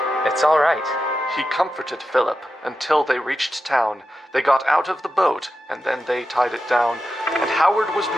It's all right. He comforted Philip until they reached town. They got out of the boat, and then they tied it down. And Howard was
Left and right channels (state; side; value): normal; both; correlation 0.90